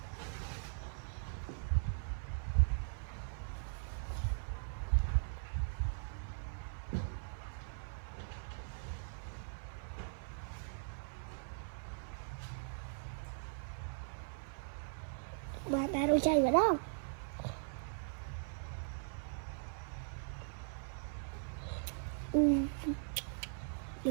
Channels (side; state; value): left; silent; 51 dB below the other